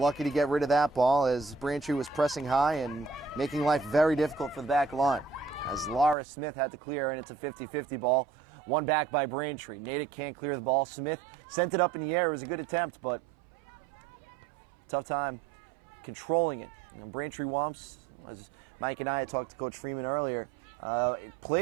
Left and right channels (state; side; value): drops out; left; at 6.2 s